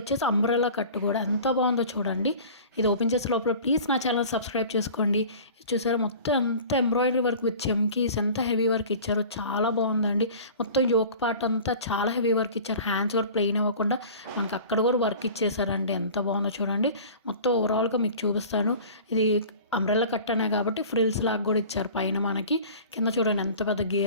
అంబ్రెల్లా కట్ కూడా ఎంత బాగుందో చూడండి. ఇది ఓపెన్ చేసే లోపల ప్లీజ్ నా ఛానల్ సబ్స్క్రైబ్ చేసుకోండి. చూసారా మొత్తం ఎంత ఎంబ్రాయిడరీ వర్క్ విత్ చెమ్కీస్, ఎంత హెవీ వర్క్ ఇచ్చారో చాలా బాగుందండి. మొత్తం యోక్ పార్ట్ అంతా చాలా హెవీ వర్క్ ఇచ్చారు. హ్యాండ్స్ కూడా ప్లెయిన్ ఇవ్వకుండా మనకి అక్కడ కూడా వర్క్ ఇచ్చేసారండి. ఎంత బాగుందో చూడండి. మొత్తం ఓవరాల్గా మీకు చూపిస్తాను. ఇది అంబ్రెల్లా కట్ అనే కాబట్టి ఫ్రిల్స్ లాగా కూడా ఇచ్చారు పైన మనకి. కింద చూడండి ఎంత పెద్ద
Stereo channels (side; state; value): both; inverted; correlation -0.41